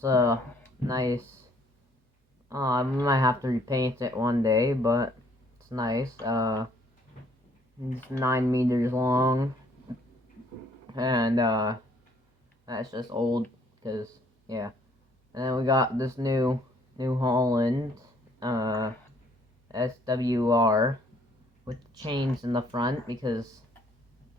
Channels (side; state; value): both; normal; correlation 0.63